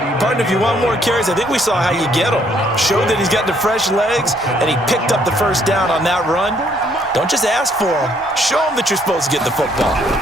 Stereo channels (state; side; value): normal; both; correlation 0.67